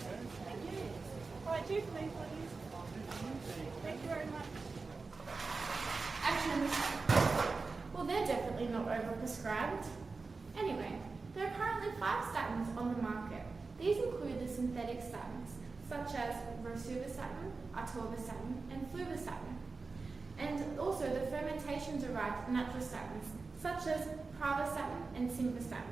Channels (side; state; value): left; quieter; 4.1 dB